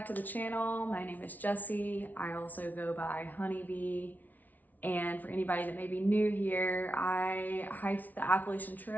to the channel. My name is Jessie. I also go by Honeybee. And for anybody that may be new here, I hiked the Appalachian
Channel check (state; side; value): late; right; 0.079 ms